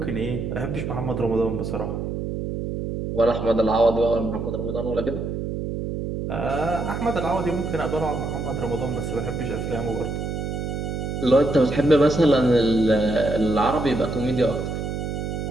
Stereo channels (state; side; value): noise; right; hum, 4 dB below the sound